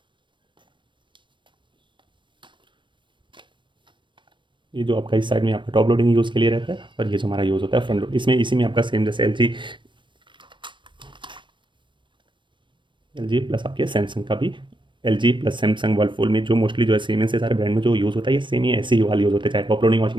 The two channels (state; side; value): late; left; 0.23 ms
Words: ये जो आपका इस साइड में आपका टॉप लोडिंग यूज़ के लिए रहता है और ये जो हमारा यूज़ होता है फ्रंट लोड, इसमें इसी में आपका सेम जैसे एल जी प्लस आपके सैमसंग का भी LG प्लस सैमसंग वर्लपूल में जो मोस्टली जो है सीमेंस से सारे ब्रांड में जो यूज़ होता है ये सेम ही ऐसे ही वाला यूज़ होता है, चाहे टॉप लोडिंग